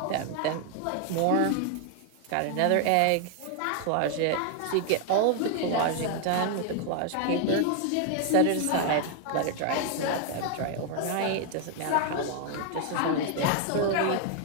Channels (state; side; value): different; both; correlation 0.00